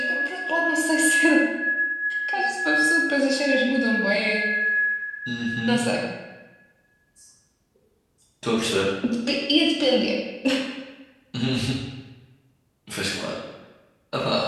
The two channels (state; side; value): identical; both; correlation 1.00